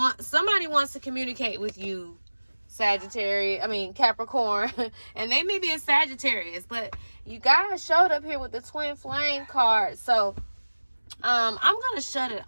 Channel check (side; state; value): both; inverted; correlation -1.00